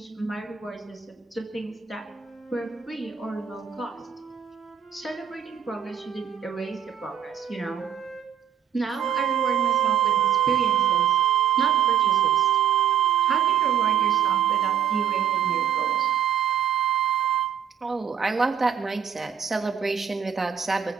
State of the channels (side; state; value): left; quieter; 8.7 dB